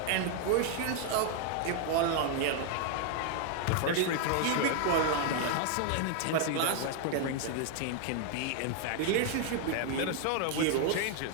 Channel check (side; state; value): both; different; correlation 0.00